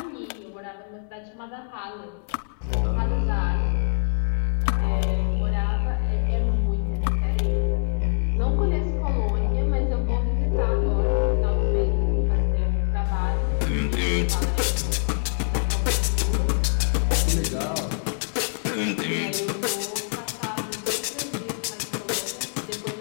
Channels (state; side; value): silent; right; digital silence